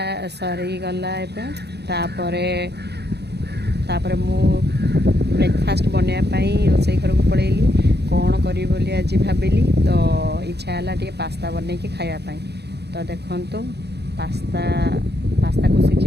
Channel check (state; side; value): late; left; 0.48 ms